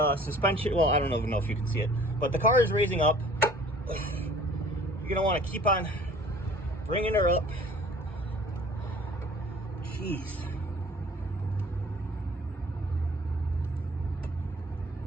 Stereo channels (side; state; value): both; normal; correlation 0.51